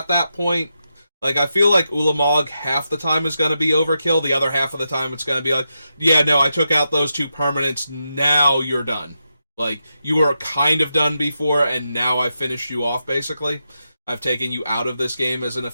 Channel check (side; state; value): both; inverted; correlation -0.87